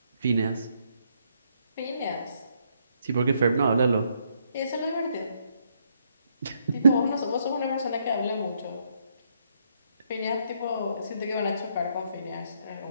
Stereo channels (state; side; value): inverted; both; correlation -0.73